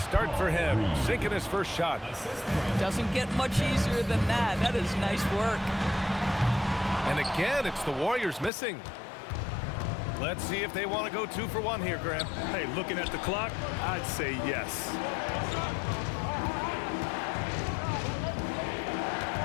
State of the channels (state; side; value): drops out; right; at 8.5 s